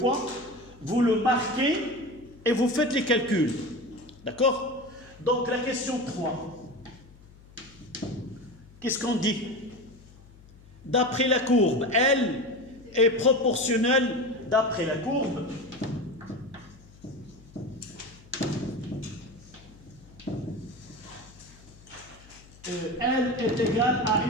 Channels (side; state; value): left; noise; hum, 23 dB below the sound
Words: vous le marquez et vous faites les calculs. D'accord? Donc, la question 3. Qu'est-ce qu'on dit? D'après la courbe, L est proportionnelle d'après la courbe. L est égale à